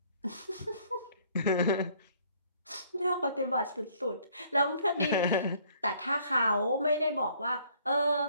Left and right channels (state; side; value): inverted; both; correlation -0.61